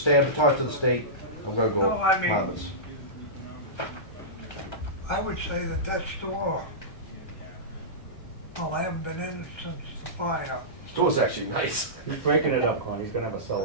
I have to talk to the state, I'm gonna go No, I mean- apartments. I would say that store, well, I haven't been in it since the fire. Store's actually nice. He's breaking it up, Con, he's gonna have a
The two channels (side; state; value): right; late; 1.3 ms